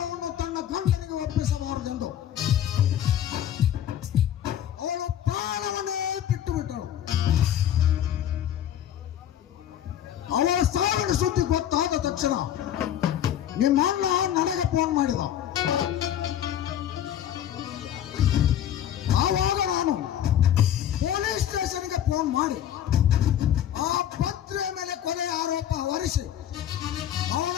ತನ್ನ ಗಂಡನಿಗೆ ಒಪ್ಪಿಸಬಾರದೆಂದು ಅವಳು ಪ್ರಾಣವನ್ನೇ ಬಿಟ್ಟು ಬಿಟ್ಟಳು. ಅವಳ ಸಾವಿನ ಸುದ್ದಿ ಗೊತ್ತಾದ ತಕ್ಷಣ ನಿಮ್ಮ ಅಣ್ಣ ನನಗೆ ಫೋನ್ ಮಾಡಿದ. ಆವಾಗ ನಾನು ಪೊಲೀಸ್ ಸ್ಟೇಷನ್ಗೆ ಫೋನ್ ಮಾಡಿ ಆ ಪತ್ರಿಯ ಮೇಲೆ ಕೊಲೆ ಆರೋಪ ಹೊರಿಸಿ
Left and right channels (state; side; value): quieter; right; 10.7 dB